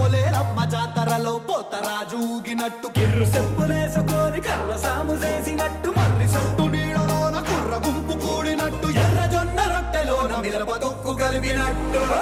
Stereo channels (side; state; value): both; identical; correlation 1.00